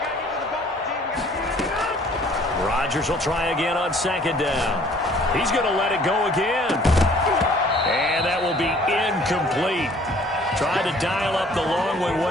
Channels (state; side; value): normal; both; correlation 0.56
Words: Rodgers will try again on 2nd down. He's going to let it go again. And that will be incomplete. Tried to dial up the long